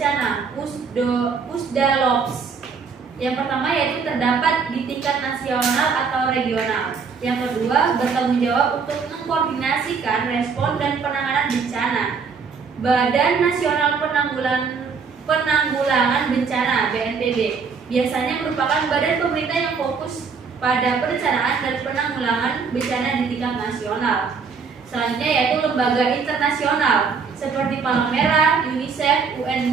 Pusdalops. Yang pertama yaitu terdapat di tingkat nasional atau regional. Yang kedua, bertanggung jawab untuk mengkoordinasikan respon dan penanganan bencana. Badan Nasional Penanggulangan Bencana (BNPB) biasanya merupakan badan pemerintah yang fokus pada perencanaan dan penanggulangan bencana di tingkat nasional. Selanjutnya yaitu lembaga internasional seperti Palang Merah, UNICEF,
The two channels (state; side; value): quieter; left; 5.5 dB